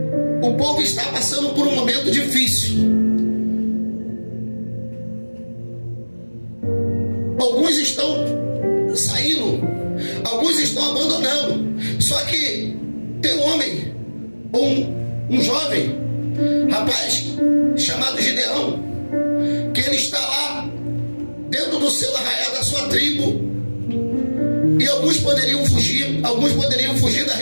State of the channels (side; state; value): both; inverted; correlation -1.00